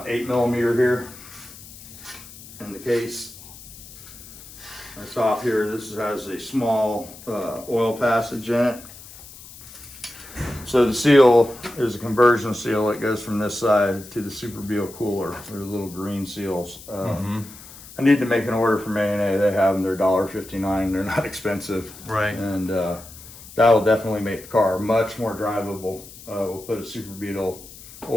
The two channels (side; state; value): left; noise; hiss, 17 dB below the sound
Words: here in the case. That's off here. This has a small oil passage in it. So the seal is a conversion seal. It goes from this side to the Super Beal cooler. They're little green seals. I need to make an order from A&A. They have them. They're $1.59. They're not expensive. Right. And that'll definitely make the car much more drivable. We'll put a Super Beetle